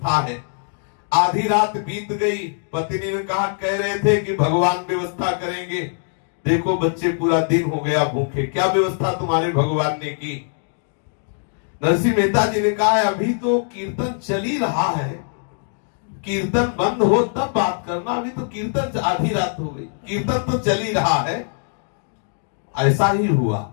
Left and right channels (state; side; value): silent; right; 64 dB below the other